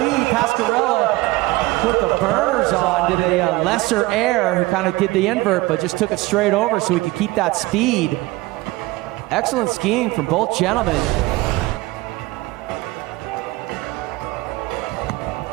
Pasquarella put the burners on, did a lesser air, who kind of did the invert, but just took it straight over so he could keep that speed. Excellent skiing from both gentlemen.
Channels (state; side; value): quieter; left; 19.9 dB